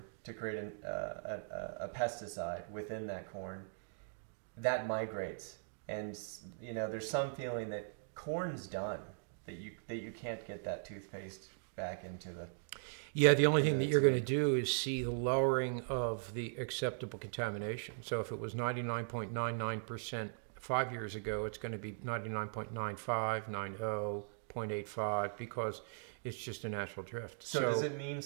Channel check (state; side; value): silent; left; digital silence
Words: to create a pesticide within that corn, that migrates. And there's some feeling that corn's done, that you can't get that toothpaste back into the... Yeah, the only thing that you're going to do is see the lowering of the acceptable contamination. So if it was 99.99% 5 years ago, it's going to be 99.95, 90, 0.85, because it's just a natural drift. So does it mean